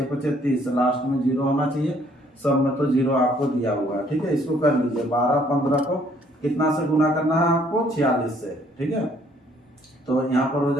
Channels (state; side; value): normal; both; correlation 0.63